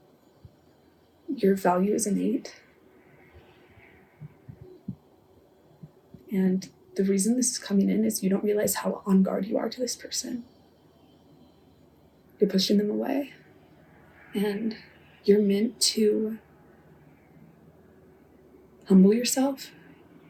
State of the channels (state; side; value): identical; both; correlation 1.00